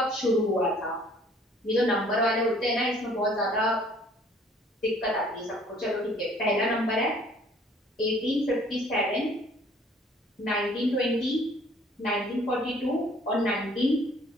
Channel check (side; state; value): both; normal; correlation 0.57